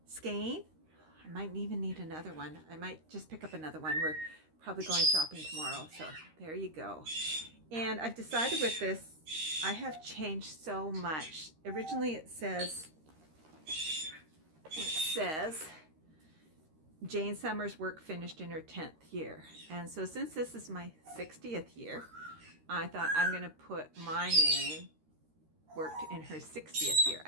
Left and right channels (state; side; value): late; left; 13 ms